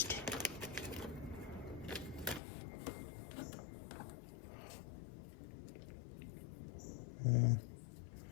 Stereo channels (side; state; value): right; drops out; at 2.4 s